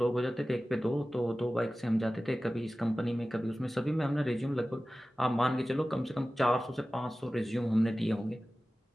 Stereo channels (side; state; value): both; normal; correlation 0.96